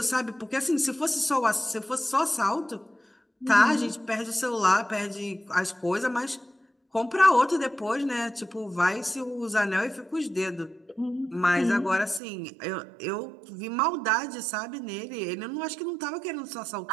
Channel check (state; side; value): drops out; left; at 12.2 s